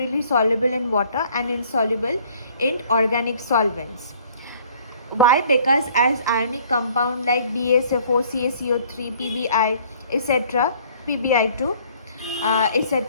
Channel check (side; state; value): both; inverted; correlation -0.57